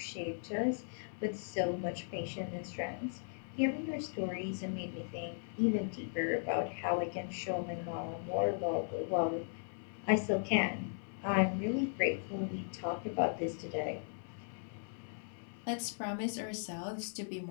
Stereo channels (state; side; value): silent; right; 53 dB below the other